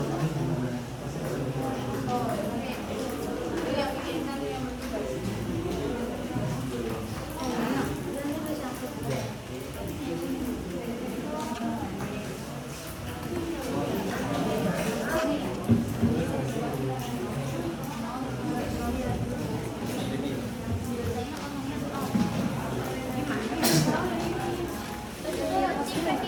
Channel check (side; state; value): both; identical; correlation 1.00